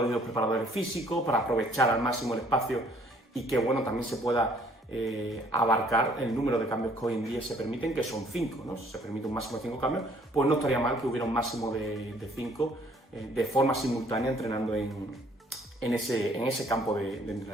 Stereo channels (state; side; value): normal; both; correlation 0.61